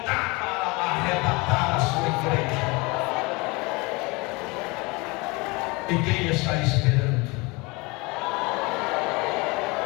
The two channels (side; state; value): right; quieter; 25.9 dB